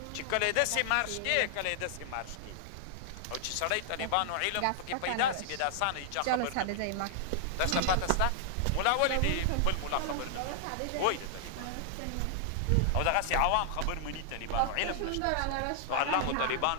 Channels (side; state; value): both; different; correlation 0.00